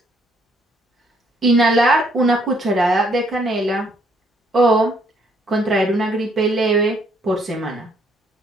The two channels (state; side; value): normal; both; correlation 0.68